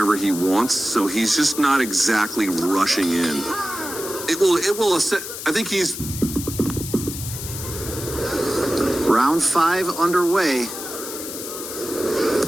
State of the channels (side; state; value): left; noise; hiss, 8 dB below the sound